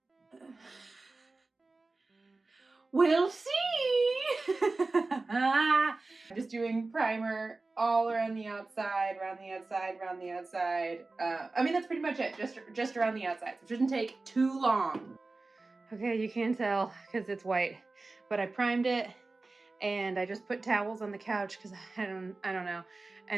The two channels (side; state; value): left; quieter; 3.4 dB